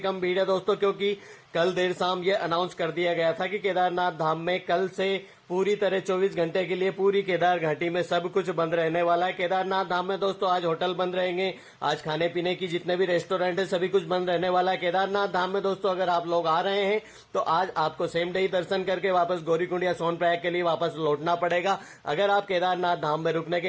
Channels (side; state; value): both; identical; correlation 1.00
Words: भीड़ है दोस्तों, क्योंकि कल देर शाम ये अनाउंस कर दिया गया था कि केदारनाथ धाम में कल से पूरी तरह 24 घंटे के लिए पूरी केदार घाटी में सब कुछ बंद रहने वाला है। केदारनाथ धाम में दोस्तों आज होटल बंद रहेंगे, आज खाने पीने की जितने भी रेस्टोरेंट है सभी कुछ बंद रहने वाला है। केदारनाथ धाम में दोस्तों अगर आप लोग आ रहे हैं तो आज आपको सेम डे ही दर्शन करके वापस गौरीकुंड या सोनप्रयाग के लिए वापस लौटना पड़ेगा। अगर आप केदारनाथ धाम में रुकने के